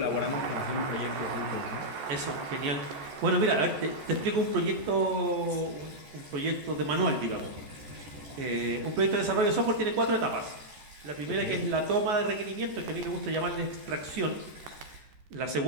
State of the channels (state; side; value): late; left; 14 ms